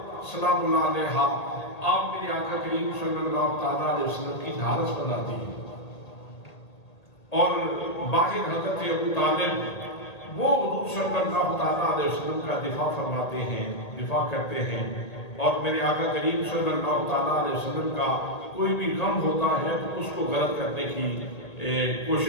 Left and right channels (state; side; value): late; right; 1.8 ms